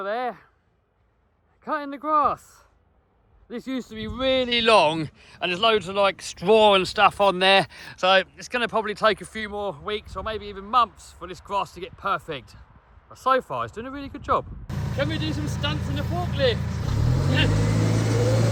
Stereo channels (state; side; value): identical; both; correlation 1.00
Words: there, cutting the grass. This used to be really long and there's loads of like straw and stuff on there. So it's going to probably take a few more weeks or maybe even months for this grass to get perfect. But so far, it's doing a really good job. Can we do some stunts in the forklift?